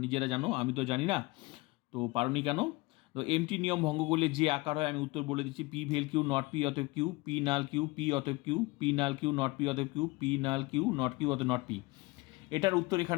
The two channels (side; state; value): right; quieter; 23.3 dB